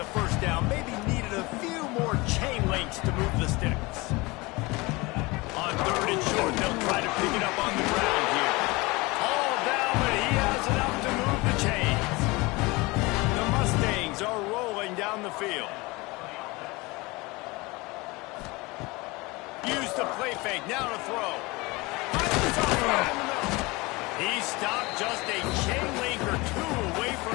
first down. Maybe needed a few more chain links to move the sticks. On third and short, they'll try to pick it up on the ground here. All down, but he has enough to move the chains. The Mustangs are rolling down the field. Use the play fake, now to throw. He stopped just a chain link or 2 away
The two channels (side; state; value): right; quieter; 23.8 dB